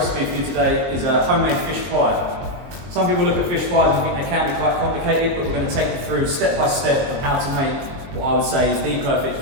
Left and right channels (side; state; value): left; late; 22 ms